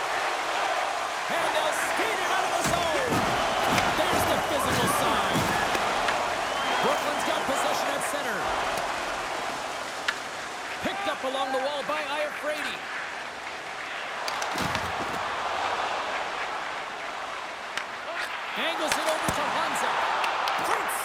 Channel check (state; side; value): identical; both; correlation 1.00